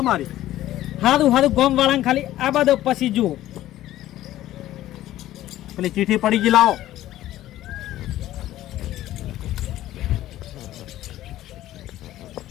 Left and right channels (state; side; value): quieter; right; 14.2 dB